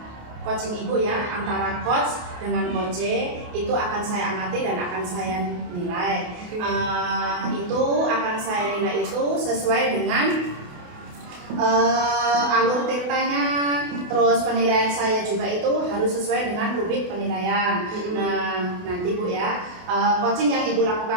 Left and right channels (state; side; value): late; left; 28 ms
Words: coaching Ibu ya, antara coach dengan coach itu akan saya amati dan akan saya nilai. Itu akan saya nilai itu sesuai dengan alur tirtanya, terus penilaian saya juga itu harus sesuai dengan rubrik penilaian. Nah nanti Bu ya, coaching yang Ibu